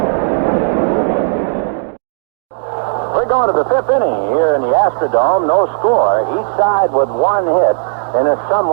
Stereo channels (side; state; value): left; silent; digital silence